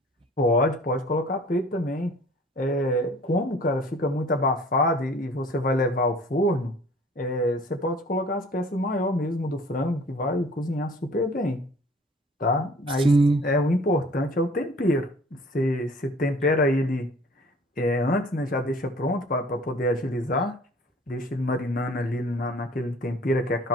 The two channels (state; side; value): normal; both; correlation 0.50